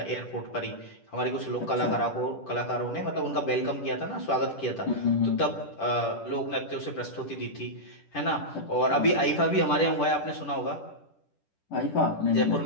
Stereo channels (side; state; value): right; late; 10 ms